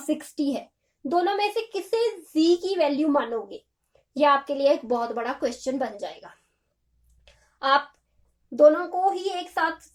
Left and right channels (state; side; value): identical; both; correlation 1.00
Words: 60 है, दोनों में से किसे z की वैल्यू मानोगे? ये आपके लिए एक बहुत बड़ा क्वेश्चन बन जाएगा। आप दोनों को ही एक साथ